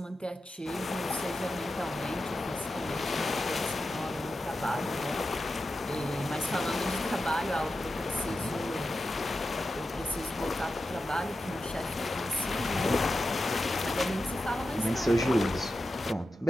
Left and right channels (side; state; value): both; normal; correlation 0.91